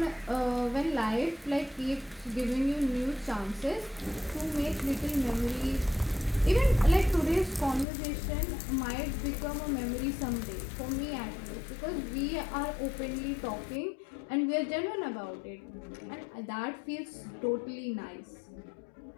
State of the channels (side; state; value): right; drops out; at 7.9 s